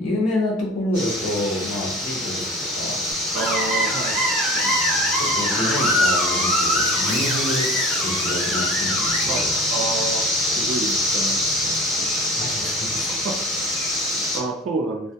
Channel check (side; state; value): both; normal; correlation 0.39